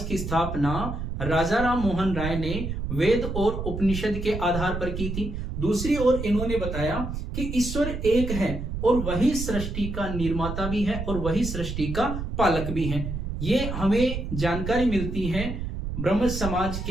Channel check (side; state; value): right; noise; rumble, 5 dB below the sound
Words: की स्थापना राजा राम मोहन राय ने वेद और उपनिषद के आधार पर की थी। दूसरी ओर इन्होंने बताया कि ईश्वर एक है और वही सृष्टि का निर्माता भी है और वही सृष्टि का पालक भी है। ये हमें जानकारी मिलती है ब्रह्म समाज